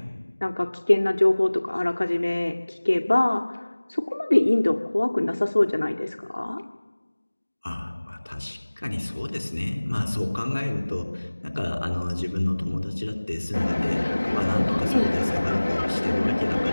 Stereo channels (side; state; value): both; inverted; correlation -1.00